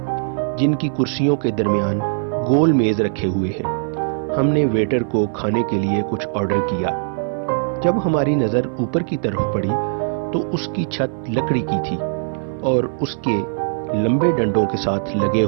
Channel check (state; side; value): silent; left; 59 dB below the other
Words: جن کی کرسیوں کے درمیان گول میز رکھے ہوئے ہیں۔ ہم نے ویٹر کو کھانے کے لیے کچھ آرڈر کیا۔ جب ہماری نظر اوپر کی طرف پڑی تو اس کی چھت لکڑی کی تھی اور اس کے لمبے ڈنڈوں کے ساتھ لگے